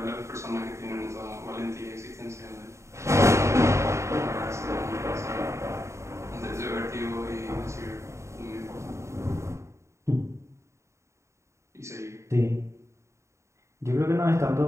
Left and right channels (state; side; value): late; left; 0.14 ms